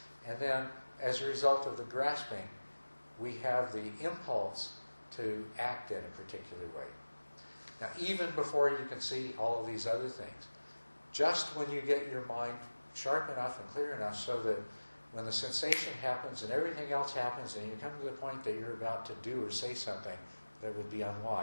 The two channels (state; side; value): inverted; both; correlation -1.00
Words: And then as a result of the grasping, we have the impulse to act in a particular way. Now, even before you can see all of these other things, just when you get your mind sharp enough and clear enough so that when the sensation happens and everything else happens and you come to the point that you're about to do or say something that would be